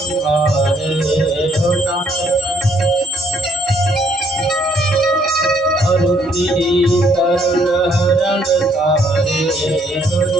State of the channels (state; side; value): normal; both; correlation 0.67